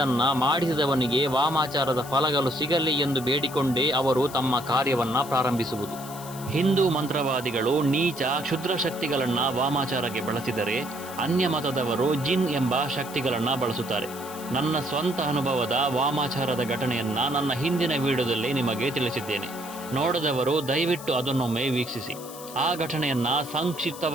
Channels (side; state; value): left; noise; hiss, 15 dB below the sound